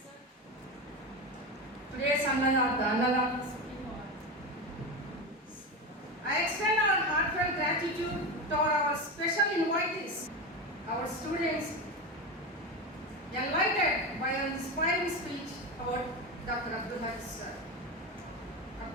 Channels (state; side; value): normal; both; correlation 0.19